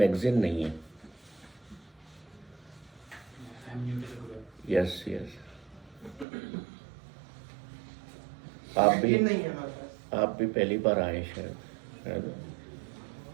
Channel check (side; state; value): left; drops out; at 6.2 s